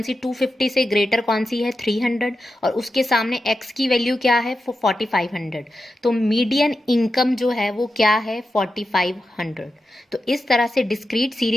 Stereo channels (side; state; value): both; normal; correlation 0.90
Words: 250 से ग्रेटर कौन सी है, 300, और उसके सामने x की वैल्यू क्या है, 4500। तो मीडियन इनकम जो है वो क्या है, 4500। तो इस तरह से डिस्क्रीट